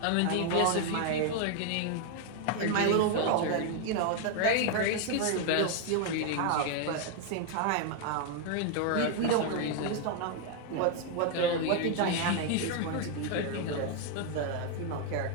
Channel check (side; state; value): both; different; correlation 0.01